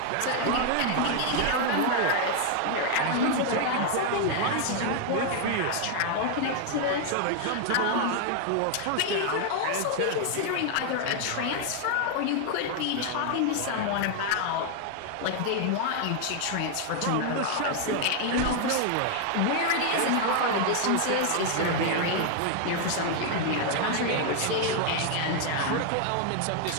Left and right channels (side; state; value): both; different; correlation 0.00